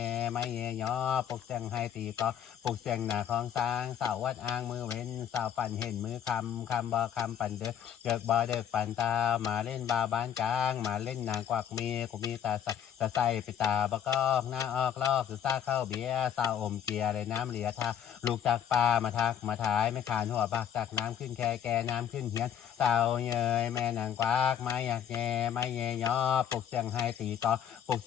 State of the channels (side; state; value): right; quieter; 9.3 dB